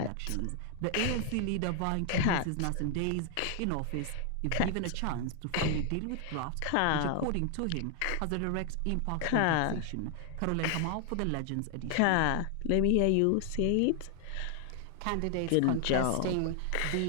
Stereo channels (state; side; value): different; both; correlation 0.00